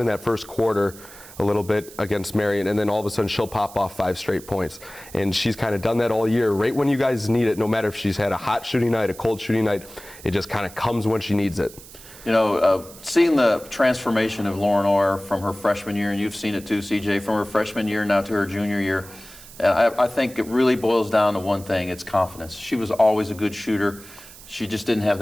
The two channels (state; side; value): noise; right; hiss, 18 dB below the sound